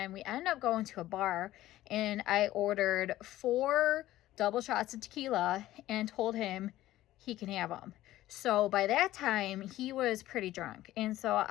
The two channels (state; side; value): quieter; right; 15.1 dB